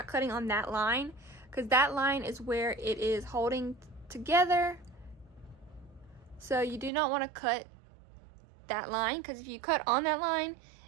cutting on that line, because that line is where it is holding together. So you do not want to cut that line, because if you cut on that line,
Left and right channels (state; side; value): drops out; left; at 6.9 s